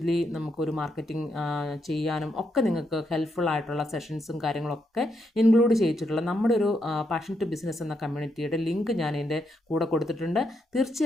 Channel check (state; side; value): normal; both; correlation 0.80